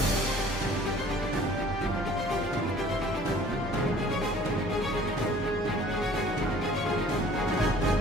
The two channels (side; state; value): both; normal; correlation 0.52